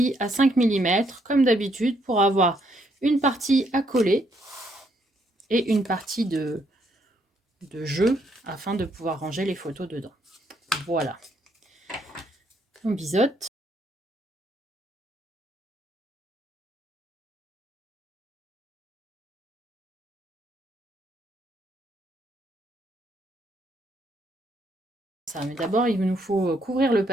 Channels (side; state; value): both; normal; correlation 0.72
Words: à 5 mm comme d'habitude pour avoir une partie à coller et une partie de jeu afin de pouvoir ranger les photos dedans. Voilà. On biseaute. Ça, mais d'abord, il nous faut couvrir le